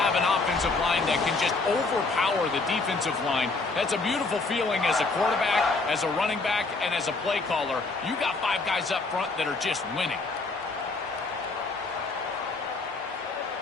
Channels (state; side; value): quieter; right; 3.7 dB